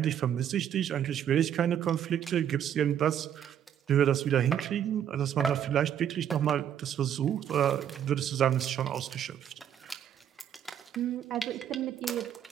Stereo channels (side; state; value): left; quieter; 9.6 dB